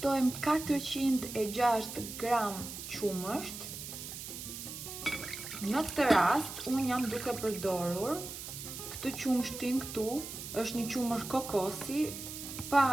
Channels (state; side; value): noise; right; hiss, 9 dB below the sound